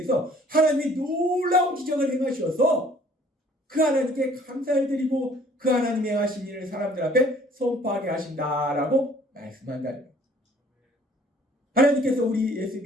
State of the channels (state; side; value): normal; both; correlation 0.56